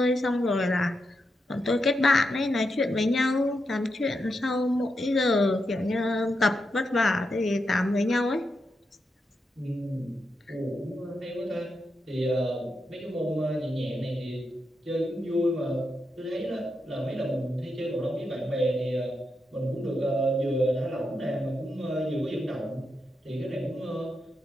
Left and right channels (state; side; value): normal; both; correlation 0.85